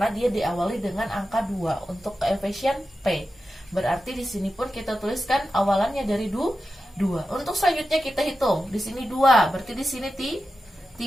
dia diawali dengan angka 2 untuk koefisien P. Berarti di sini pun kita tuliskan awalannya dari 2. Untuk selanjutnya kita hitung. Di sini 2, berarti di sini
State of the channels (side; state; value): both; normal; correlation 0.92